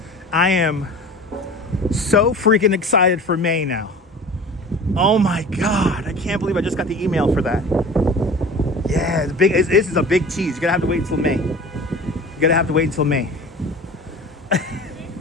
I am so freaking excited for May now. Oh my God, I can't believe I just got the email for that. Yeah, this is a big tease. You're gonna have to wait until May. You're gonna have to wait until May.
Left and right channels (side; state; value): both; normal; correlation 0.39